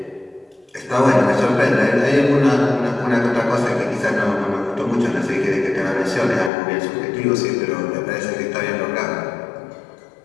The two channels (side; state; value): right; drops out; at 6.5 s